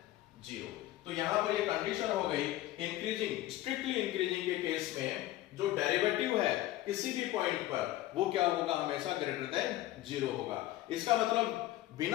0। तो यहां पर ये कंडीशन हो गई इंक्रीजिंग, स्ट्रिक्टली इंक्रीजिंग के केस में जो डेरिवेटिव है किसी भी पॉइंट पर वो क्या होगा, हमेशा ग्रेटर देन 0 होगा। इसका मतलब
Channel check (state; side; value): quieter; right; 15.3 dB